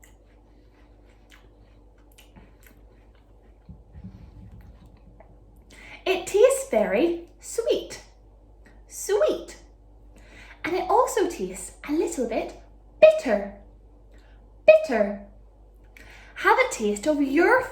It tastes very sweet. Sweet. And it also tastes a little bit bitter. Bitter. Have a taste of your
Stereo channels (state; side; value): identical; both; correlation 1.00